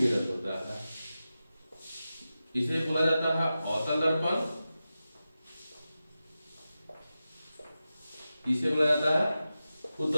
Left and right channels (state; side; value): inverted; both; correlation -0.93